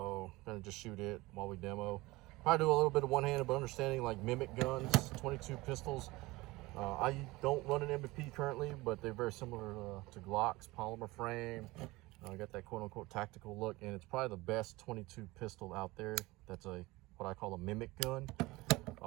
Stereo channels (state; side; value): quieter; left; 20.9 dB